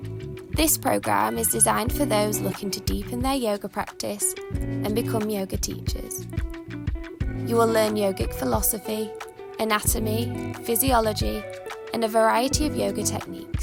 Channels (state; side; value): identical; both; correlation 1.00